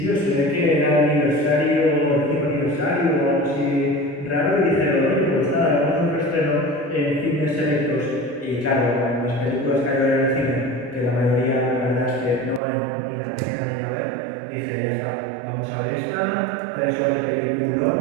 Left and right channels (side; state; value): left; drops out; at 12.6 s